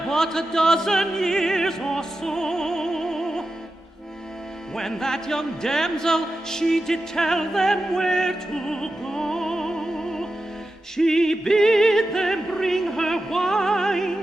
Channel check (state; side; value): normal; both; correlation 0.91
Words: but a dozen years or so, when that young damsel, she did tell them where to go. She bid them bring her